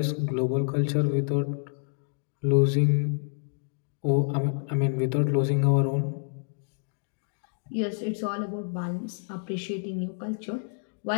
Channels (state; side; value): silent; right; 59 dB below the other